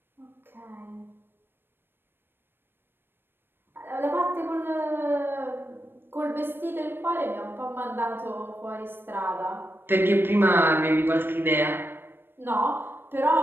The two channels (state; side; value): late; left; 0.10 ms